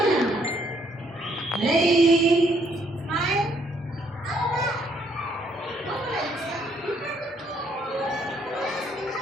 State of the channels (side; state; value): both; normal; correlation 0.69